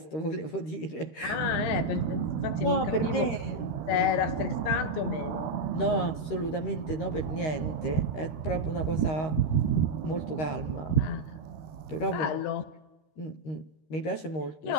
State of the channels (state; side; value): late; right; 13 ms